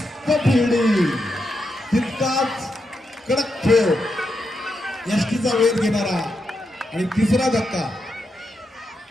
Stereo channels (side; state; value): both; normal; correlation 0.84